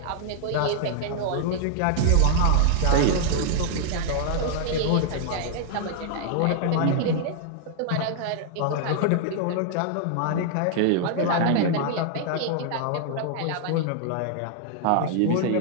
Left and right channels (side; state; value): both; different; correlation 0.00